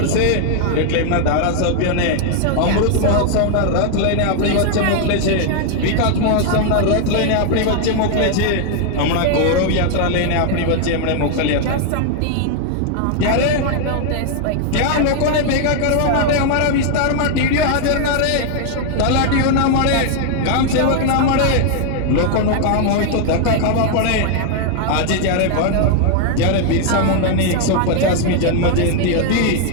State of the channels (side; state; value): both; different; correlation 0.00